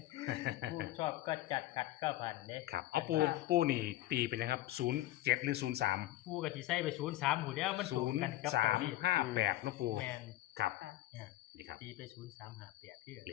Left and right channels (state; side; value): quieter; right; 15.8 dB